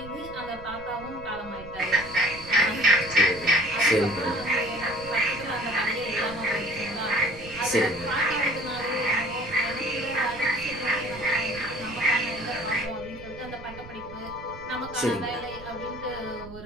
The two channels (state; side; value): noise; right; rumble, 16 dB below the sound